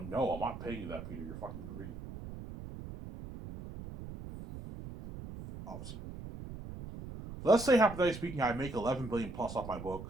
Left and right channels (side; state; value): right; noise; rumble, 11 dB below the sound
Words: no, I'm not paying you that, Peter. You're fucking greedy. Obviously. Let's say, hypothetically speaking, I make 11 billion plus off my